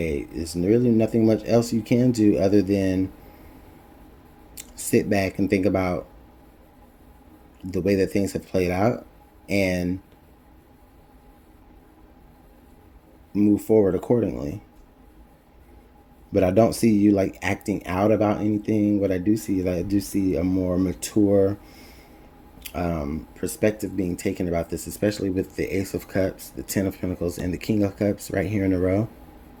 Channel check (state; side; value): identical; both; correlation 1.00